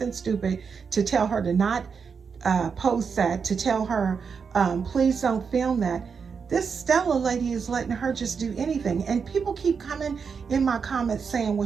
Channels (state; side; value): quieter; left; 5.9 dB